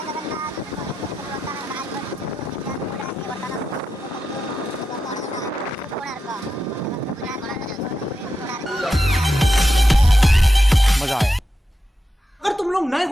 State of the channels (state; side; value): normal; both; correlation 0.88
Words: मजा आया। अगर तुम लोग नए